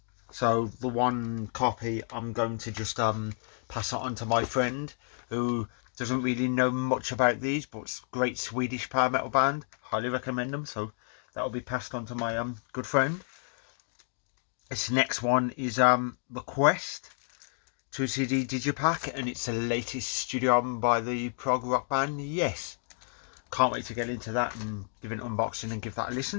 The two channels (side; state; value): right; silent; 57 dB below the other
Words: So the one copy I'm going to just pass it on to my friend who doesn't really know much about these, but it's a great Swedish power metal band. Highly recommend them. So that'll be passed on to my good friend. This next one is The Quest 2 CD Digipack, and it's the latest studio album by the prog rock band Yes. Can't wait to get into that and give an unboxing and give that a